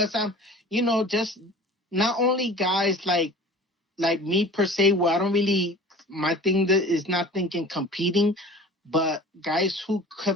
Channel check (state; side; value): normal; both; correlation 0.42